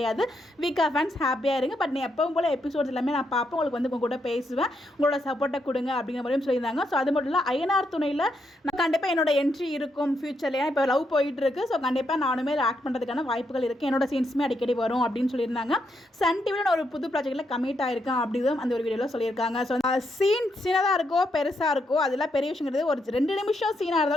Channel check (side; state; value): both; normal; correlation 0.79